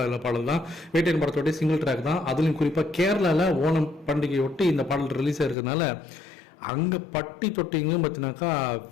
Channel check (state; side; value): drops out; right; at 5.6 s